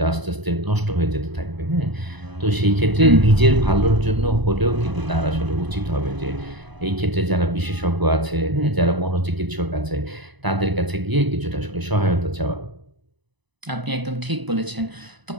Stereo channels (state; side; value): late; left; 1.0 ms